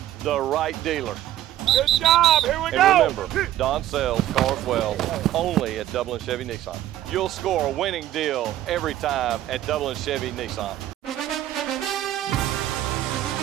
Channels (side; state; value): left; quieter; 13.1 dB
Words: the right dealer. Good job, here we go! And remember, Don sells cars well, only at Dublin Chevy Nissan. You'll score a winning deal every time at Dublin Chevy Nissan.